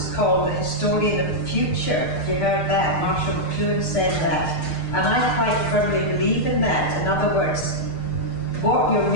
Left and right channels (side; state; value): right; late; 6.6 ms